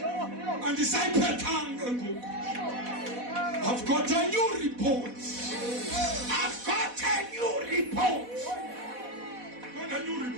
Andisayiphethanga ngoku. I've got a new report. I've got a new report. Got a new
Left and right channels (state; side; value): late; left; 4.1 ms